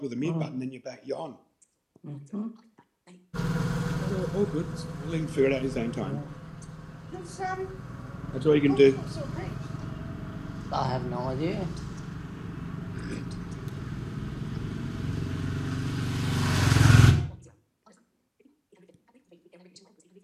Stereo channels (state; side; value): identical; both; correlation 1.00